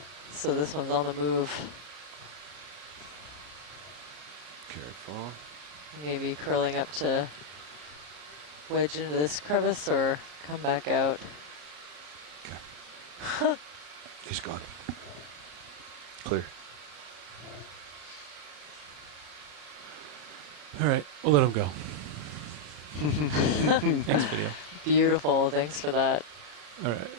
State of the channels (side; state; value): left; late; 33 ms